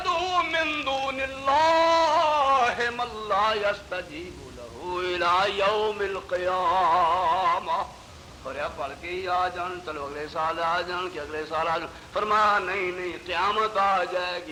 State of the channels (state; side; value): identical; both; correlation 1.00